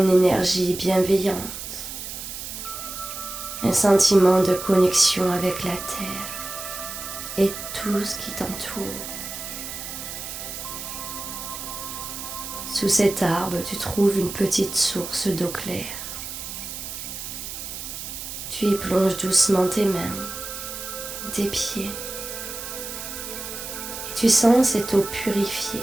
énergie bienveillante, un sentiment de connexion avec la terre et tout ce qui t'entoure. Sous cet arbre, tu trouves une petite source d'eau claire. Tu y plonges doucement tes mains ou tes pieds et tu sens cette eau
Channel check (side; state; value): right; noise; hiss, 8 dB below the sound